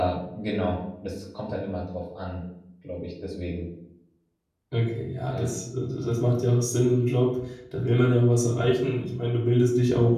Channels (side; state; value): both; identical; correlation 1.00